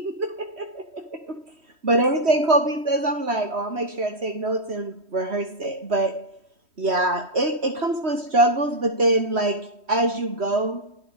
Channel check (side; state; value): left; late; 3.1 ms